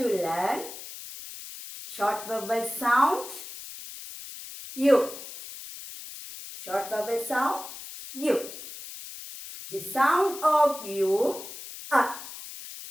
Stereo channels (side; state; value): left; noise; hiss, 12 dB below the sound